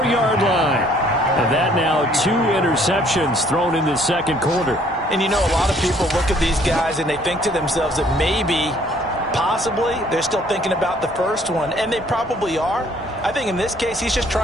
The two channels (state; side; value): normal; both; correlation 0.61